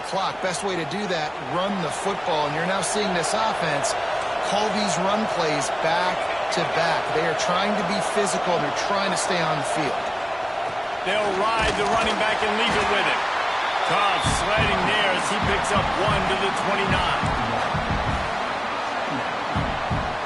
clock. Best way to do that, run the football. And you're now seeing this offense call these run plays back to back. They are trying to be physical. They're trying to stay on the field. They'll ride the running back and leave it with him. Cobb sliding there as he picks up 1 to the 29.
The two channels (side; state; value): both; identical; correlation 1.00